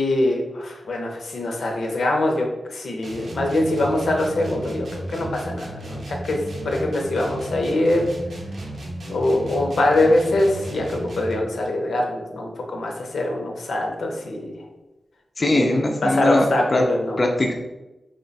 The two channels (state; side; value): normal; both; correlation 0.91